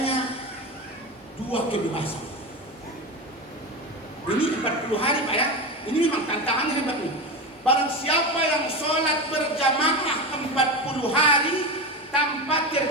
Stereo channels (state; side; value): normal; both; correlation 0.21